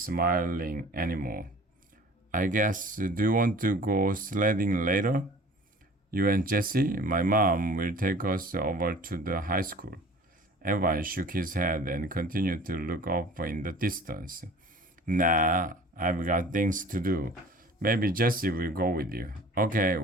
anymore. "I guess, do you want to go sledding later?" "You and Jesse? My mom will take us over to the high school." Evan shook his head and continued to look up in the distance. "Nah, I've got things to do. Maybe Jesse will go with you." "Okay,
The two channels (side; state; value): both; normal; correlation 0.46